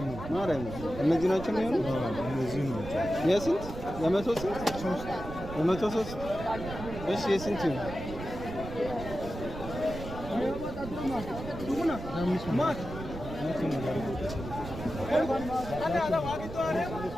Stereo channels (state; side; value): noise; right; rumble, 10 dB below the sound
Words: ነው ማርያም። እነዚህ ናቸው የሚሆኑ እነዚህ ነው። የስንት የመቶ ስንት ሶስት የመቶ ሶስት እሺ የስንት ነው?